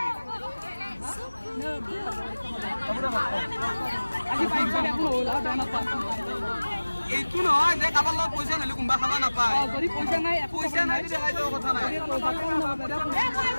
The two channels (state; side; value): inverted; both; correlation -1.00